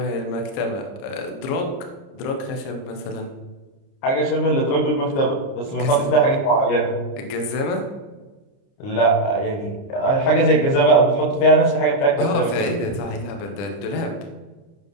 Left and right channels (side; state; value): right; late; 30 ms